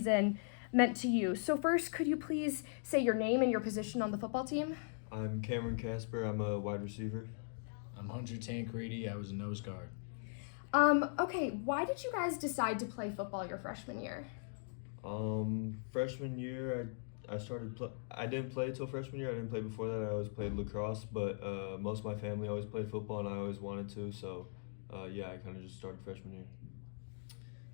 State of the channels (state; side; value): silent; right; digital silence